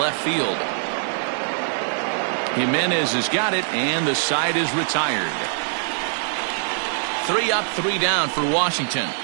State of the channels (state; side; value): silent; left; digital silence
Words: field. Jimenez has got it, and the side is retired. 3 up, 3 down for Washington.